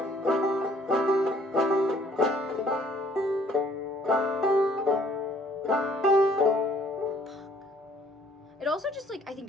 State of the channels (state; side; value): normal; both; correlation 0.59